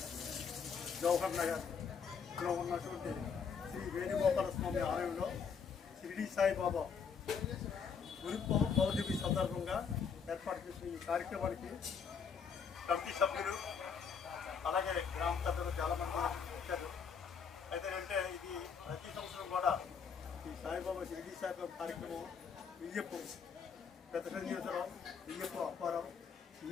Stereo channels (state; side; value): quieter; right; 6.4 dB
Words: జవహర్ నగర్లో ఉన్నటువంటి శ్రీ వేణుగోపాల స్వామి ఆలయంలో షిరిడి సాయిబాబా గురు పౌర్ణమి సందర్భంగా ఏర్పాటు చేసిన ఈ కార్యక్రమానికి కమిటీ సభ్యులు అలాగే గ్రామ పెద్దలు చాలామంది వచ్చారు. అయితే అంటే ఇది ప్రతి సంవత్సరం కూడా ఈ సాయిబాబా షిరిడి సాయిబాబా కార్యక్రమం వియ్యప్పు పెద్ద సన్యాసరావు, వియ్యప్పు అప్పారావు,